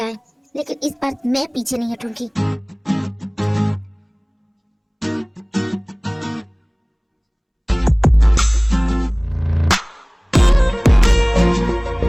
लेकिन इस बार मैं पीछे नहीं हटूंगी।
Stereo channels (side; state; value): both; identical; correlation 1.00